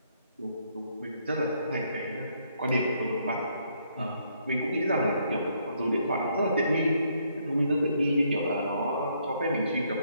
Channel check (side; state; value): both; inverted; correlation -0.71